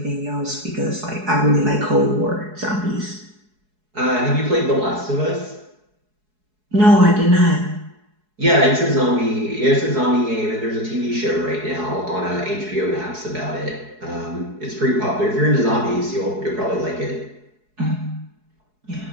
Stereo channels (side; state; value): left; late; 4.7 ms